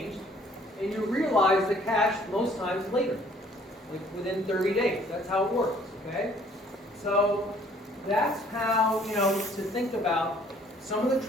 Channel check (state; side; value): normal; both; correlation 0.59